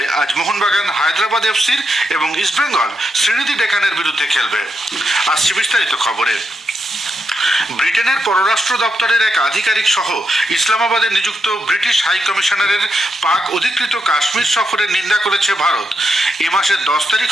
আজ মোহনবাগান হায়দ্রাবাদ এফসির এবং ইস্টবেঙ্গল শ্রীনিধি ডেকানের বিরুদ্ধে খেলবে। আসছে বিস্তারিত খবরে। ব্রিটেনের পররাষ্ট্র দপ্তরের এক আধিকারিক সহ ইসলামাবাদে নিযুক্ত ব্রিটিশ হাই কমিশনারের পাক অধিকৃত কাশ্মীর সফরের নিন্দা করেছে ভারত। এ মাসের 10 তারিখ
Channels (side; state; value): both; normal; correlation 0.83